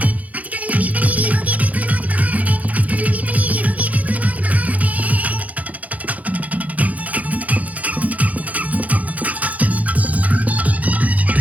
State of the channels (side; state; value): left; late; 0.073 ms